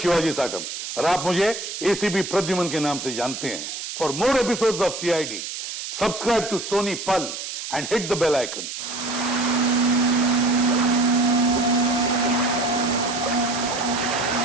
साटम और आप मुझे एसीपी प्रद्युमन के नाम से जानते हैं। For more episodes of CID, subscribe to Sony Pal and hit the bell icon.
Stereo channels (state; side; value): noise; right; hiss, 7 dB below the sound